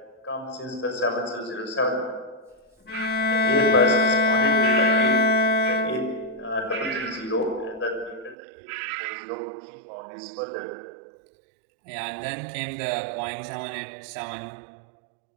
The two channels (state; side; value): drops out; left; at 8.3 s